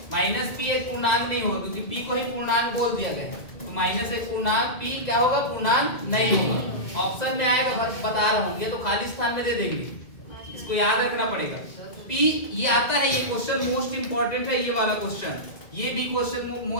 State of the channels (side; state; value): right; late; 2.0 ms